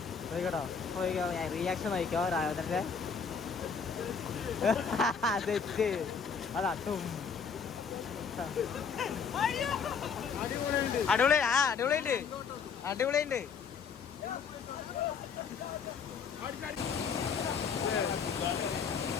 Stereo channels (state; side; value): quieter; right; 6.1 dB